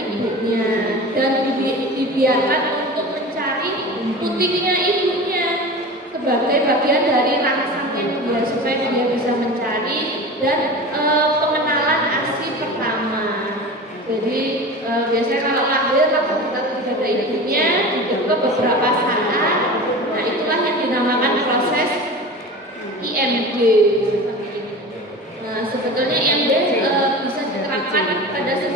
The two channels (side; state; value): both; normal; correlation 0.33